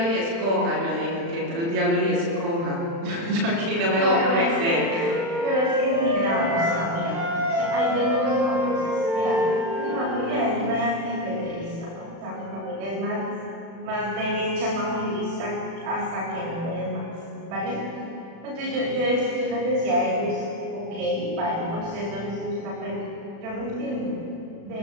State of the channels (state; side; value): late; left; 36 ms